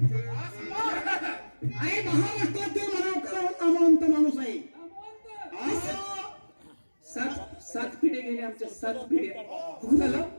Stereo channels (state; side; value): inverted; both; correlation -1.00